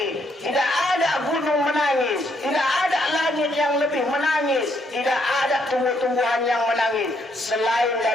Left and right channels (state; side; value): normal; both; correlation 0.73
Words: tidak ada gunung menangis, tidak ada langit yang lebih menangis, tidak ada tumbuh-tumbuhan yang menangis selain